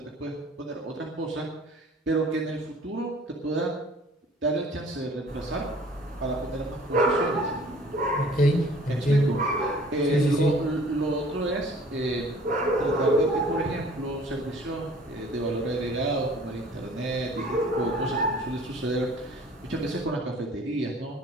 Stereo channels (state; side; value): normal; both; correlation 0.51